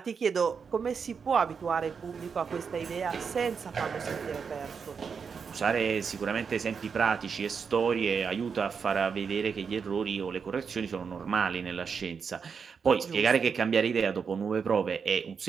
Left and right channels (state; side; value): quieter; left; 6.0 dB